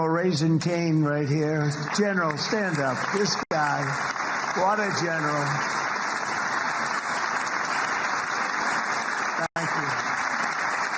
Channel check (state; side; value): identical; both; correlation 1.00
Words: Raisin Cain right here. General, stand up. This guy, what a general. Thank you.